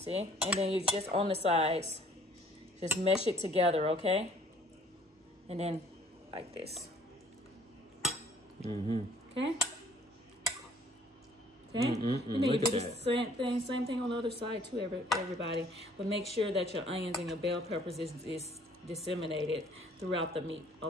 And then you just on the sides, just mesh it together, okay? And then like this. Okay? Okay, and then you do the same thing on the other side too, everybody. But make sure that your onions and your bell peppers is disseminated throughout the meat,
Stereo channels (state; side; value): normal; both; correlation 0.57